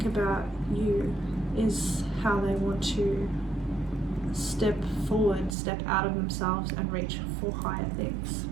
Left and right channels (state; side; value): drops out; left; at 5.6 s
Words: about you, is how they want to step forward, step out of themselves and reach for higher things.